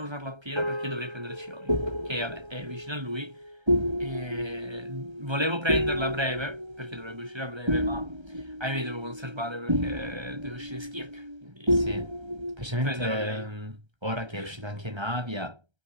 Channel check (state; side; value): late; left; 1.3 ms